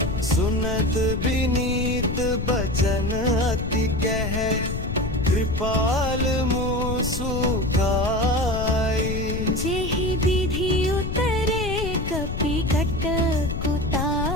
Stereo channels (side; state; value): left; noise; rumble, 4 dB below the sound